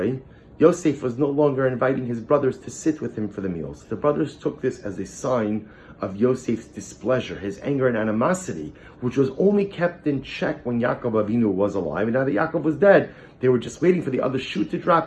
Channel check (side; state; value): both; identical; correlation 1.00